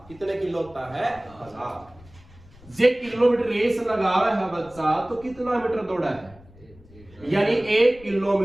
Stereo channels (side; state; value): left; noise; rumble, 24 dB below the sound